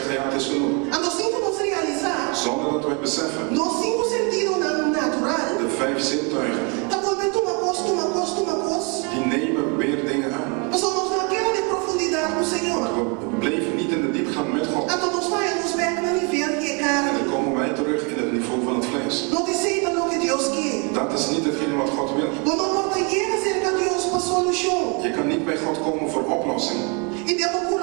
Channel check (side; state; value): left; quieter; 33.6 dB